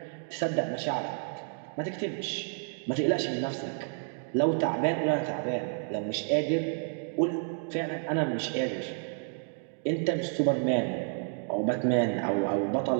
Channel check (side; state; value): left; silent; 56 dB below the other